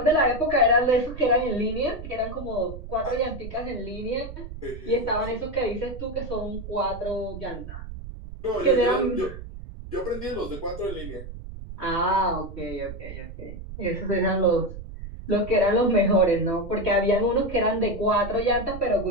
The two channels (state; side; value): noise; right; rumble, 11 dB below the sound